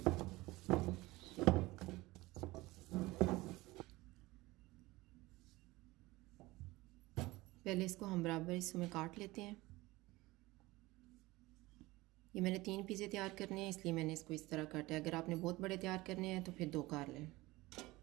पहले इसको हम बराबर हिस्सों में काट लेते हैं। ये मैंने 3 पिज़्ज़े तैयार करने हैं, इसलिए मैंने इसको इस तरह काटा है। अगर आपने बहुत बड़े तैयार करने हैं तो फिर 2 काट लें।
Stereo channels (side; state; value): left; quieter; 20.2 dB